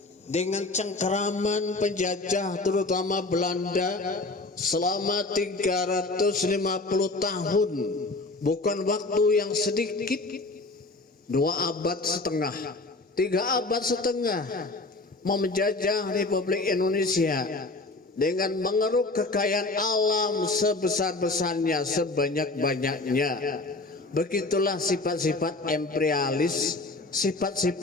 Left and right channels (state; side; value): quieter; right; 3.2 dB